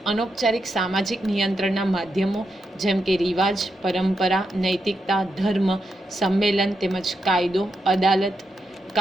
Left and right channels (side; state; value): both; normal; correlation 0.84